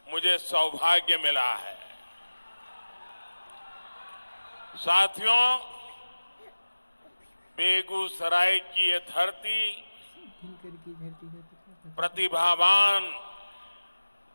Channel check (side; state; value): both; inverted; correlation -1.00